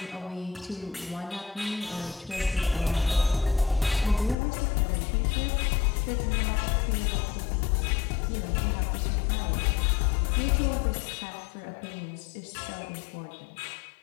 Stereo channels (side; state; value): right; drops out; at 4.4 s